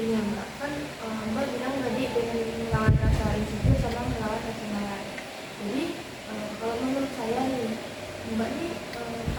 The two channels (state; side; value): identical; both; correlation 1.00